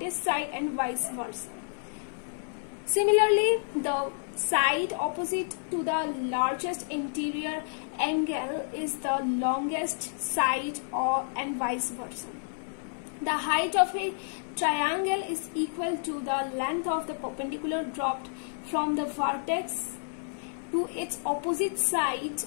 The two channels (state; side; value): silent; right; 58 dB below the other